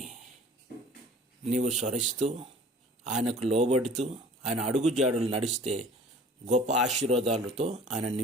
నీవు స్మరిస్తూ ఆయనకు లోబడుతూ ఆయన అడుగుజాడులు నడిస్తే గొప్ప ఆశీర్వాదాలతో ఆయన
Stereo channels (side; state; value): both; normal; correlation 0.47